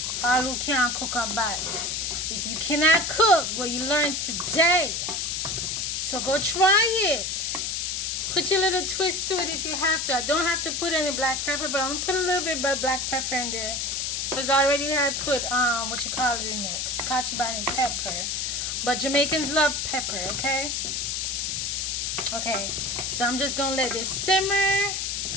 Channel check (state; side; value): noise; left; hiss, 1 dB below the sound